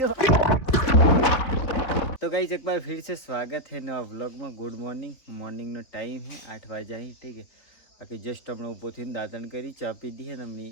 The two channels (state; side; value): late; right; 4.1 ms